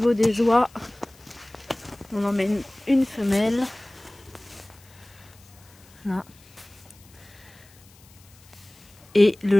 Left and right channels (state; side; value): noise; left; hiss, 26 dB below the sound